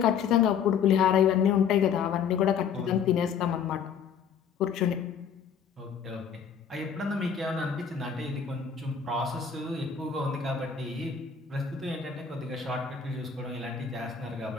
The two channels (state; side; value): quieter; right; 7.1 dB